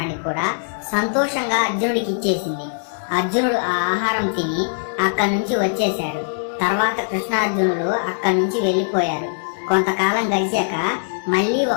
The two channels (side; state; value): right; silent; digital silence